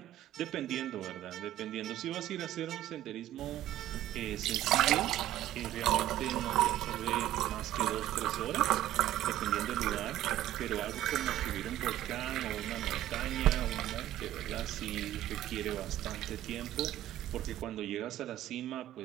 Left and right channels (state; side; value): quieter; left; 13.3 dB